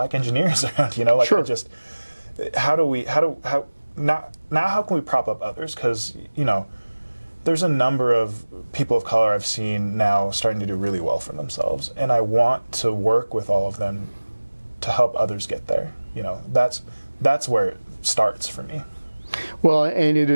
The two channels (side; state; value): both; inverted; correlation -1.00